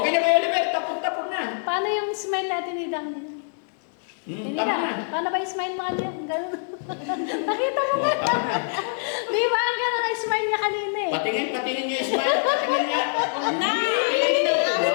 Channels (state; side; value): silent; right; digital silence